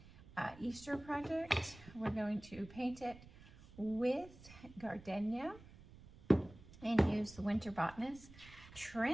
Easter project. We're going to paint it with gardenia and use the Winter Botanist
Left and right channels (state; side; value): noise; right; rumble, 20 dB below the sound